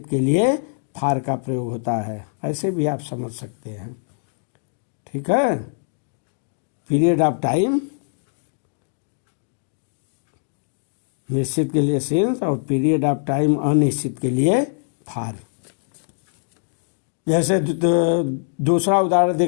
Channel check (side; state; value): right; silent; digital silence